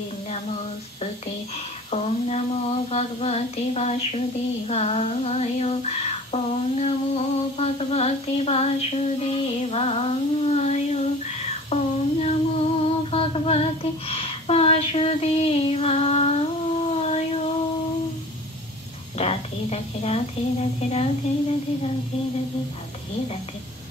নমস্তুতে। ওম নমো ভগবতে বাসুদেবায়। ওম নমো ভগবতে বাসুদেবায়। ওম নমো ভগবতে বাসুদেবায়। রাধে রাধে রাধে রাধে রাধে রাধে রাধে রাধে রাধে রাধে।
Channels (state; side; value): normal; both; correlation 0.42